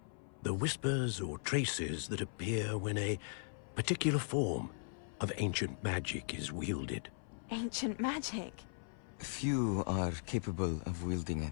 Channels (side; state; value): right; silent; 52 dB below the other